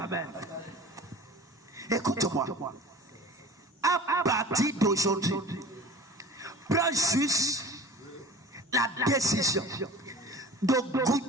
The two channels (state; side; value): normal; both; correlation 0.40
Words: Écoute-moi. À partir d'aujourd'hui, prends juste la décision de